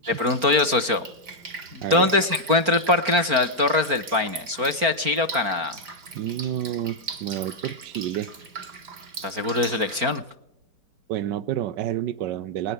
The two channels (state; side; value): late; left; 4.4 ms